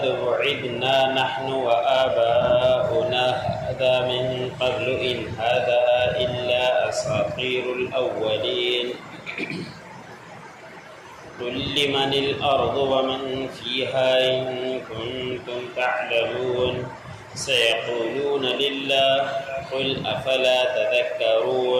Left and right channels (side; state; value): both; identical; correlation 1.00